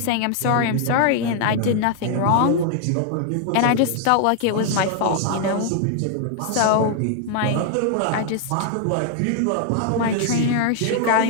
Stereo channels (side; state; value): both; different; correlation 0.00